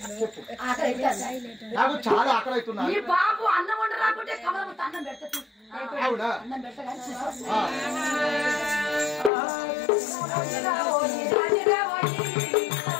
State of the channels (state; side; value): drops out; right; at 9.3 s